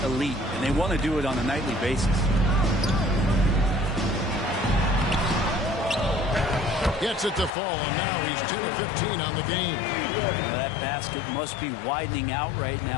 elite, and they want to do it on a nightly basis. Gets it to fall, and now he's 10 of 15 on the game. That basket must be widening out right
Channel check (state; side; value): drops out; right; at 7.5 s